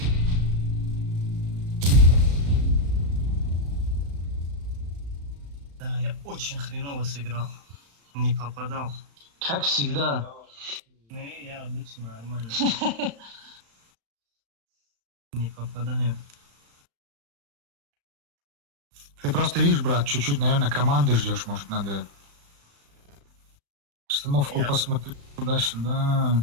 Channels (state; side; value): late; left; 35 ms